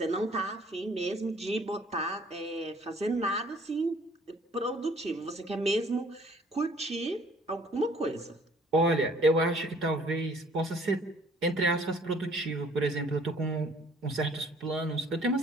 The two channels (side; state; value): both; normal; correlation 0.57